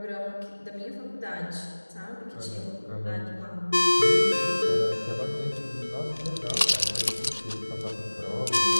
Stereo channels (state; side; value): inverted; both; correlation -1.00